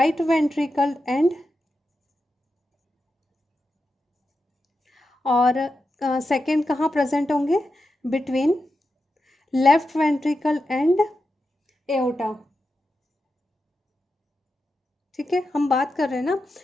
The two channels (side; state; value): both; normal; correlation 0.89